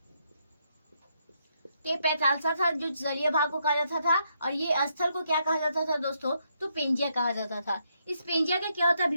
तो ये पैंथालसा था जो जलीय भाग को कहा जाता था, और ये स्थल को क्या कहा जाता था दोस्तों? तो पेंजिया कहा जाता था। इस पेंजिया का क्या होता है?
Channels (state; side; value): inverted; both; correlation -0.76